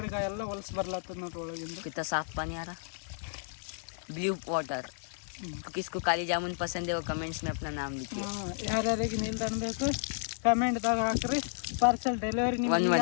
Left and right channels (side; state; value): right; silent; digital silence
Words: ಈಗ ಎಲ್ಲ ಹೊಲಸು ಬರ್ಲತ್ತದ ನೋಡ್ರಿ ಒಳಗಿಂದ कितना साफ पानी आ रहा ब्लू वाटर तो किसको काली जामुन पसंद है वो कमेंट्स में अपना नाम लिखिए ಯಾರ್ಯಾರಿಗೆ ನಿಲ್ದಾಣ ಬೇಕು ಕಮೆಂಟ್ದಾಗ ಹಾಕ್ರಿ. ಪಾರ್ಸಲ್ ಡೆಲಿವರಿ ನಿಮ್ಗೆ